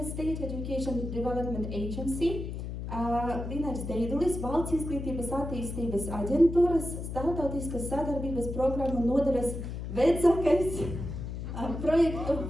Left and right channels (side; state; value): left; noise; hum, 6 dB below the sound